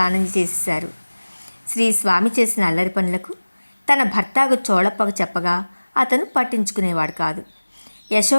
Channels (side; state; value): both; inverted; correlation -1.00